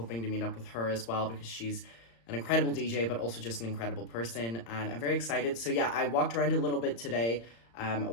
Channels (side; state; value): right; late; 35 ms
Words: to meet up with her as well, because she's an incredible DJ, but also just an incredible person, and I'm very excited. So yeah, I walked around a little bit today,